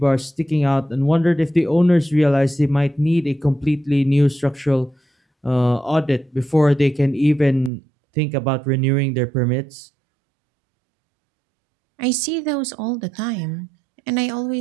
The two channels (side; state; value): left; drops out; at 7.7 s